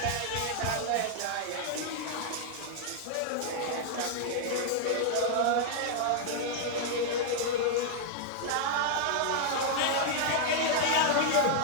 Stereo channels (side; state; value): both; different; correlation -0.01